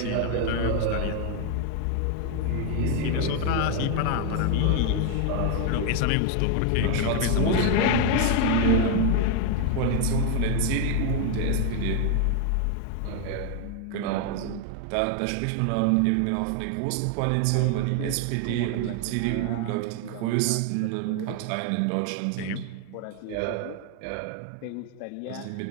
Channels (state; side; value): different; both; correlation 0.01